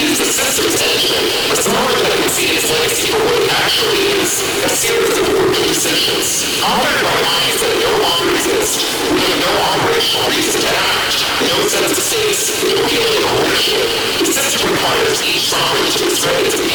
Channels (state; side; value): identical; both; correlation 1.00